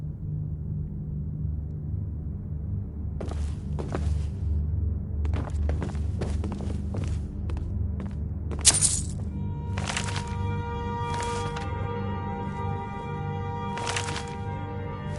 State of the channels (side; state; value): both; identical; correlation 1.00